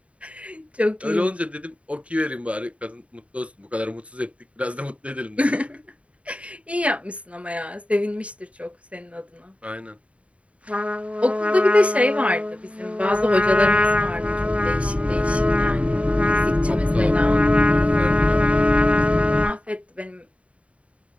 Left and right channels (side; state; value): left; late; 0.064 ms